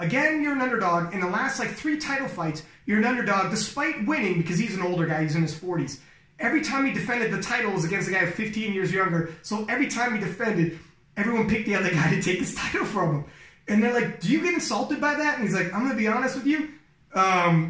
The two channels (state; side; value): identical; both; correlation 1.00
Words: you're an underdog. In the last like 3 title fights, you're an underdog despite winning, because he's an older guy, he's in his 40s. Every time he defended the title was against a guy 15 years younger. So every time he defended, everyone picked the other guy to take his title from him. And they're like, do you get insulted by that? And he's like, I'm going to be honest with you.